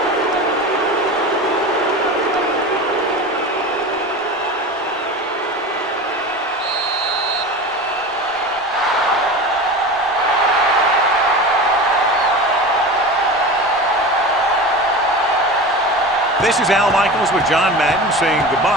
This is Al Michaels with John Madden saying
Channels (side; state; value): both; normal; correlation 0.31